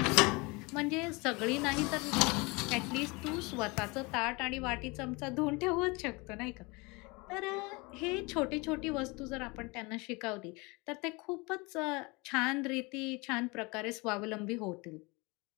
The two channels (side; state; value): right; quieter; 26.5 dB